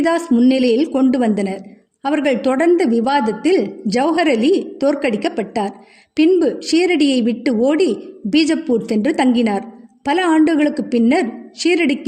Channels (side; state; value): both; identical; correlation 1.00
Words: முன்னிலையில் கொண்டு வந்தனர். அவர்கள் தொடர்ந்த விவாதத்தில் ஜௌஹர் அலி தோற்கடிக்கப்பட்டார். பின்பு ஷீரடியை விட்டு ஓடி பீஜப்பூர் சென்று தங்கினார். பல ஆண்டுகளுக்கு பின்னர்